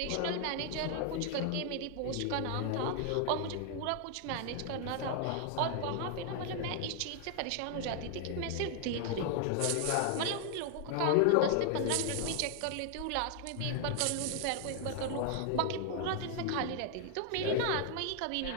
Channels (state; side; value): different; both; correlation 0.00